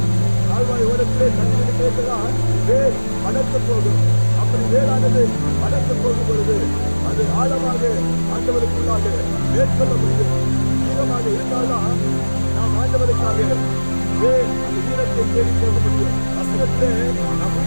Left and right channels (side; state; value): both; inverted; correlation -1.00